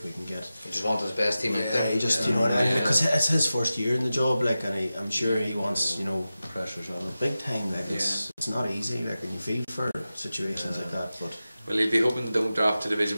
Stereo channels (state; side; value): inverted; both; correlation -0.94